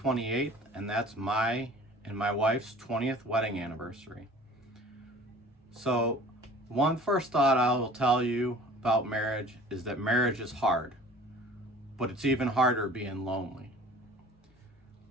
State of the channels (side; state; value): both; normal; correlation 0.46